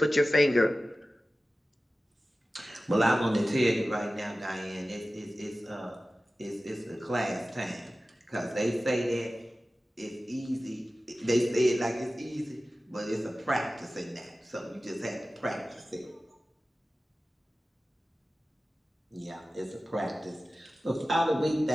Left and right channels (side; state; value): both; normal; correlation 0.96